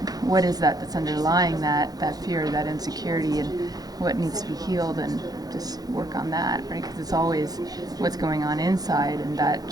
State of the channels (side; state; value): left; late; 0.19 ms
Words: what is that's underlying that fear, that insecurity, and what needs to be healed, and just work on that, right? Because it's always what's going on inside, and that